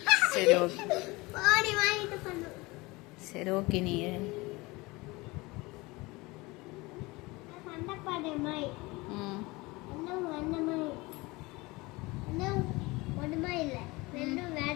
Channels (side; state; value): right; quieter; 23.1 dB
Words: சரி, ஓகே. சரி, ஓகே. நீ